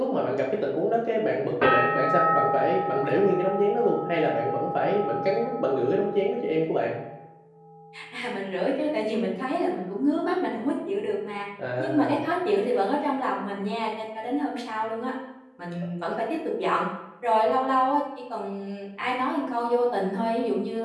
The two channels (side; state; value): both; identical; correlation 1.00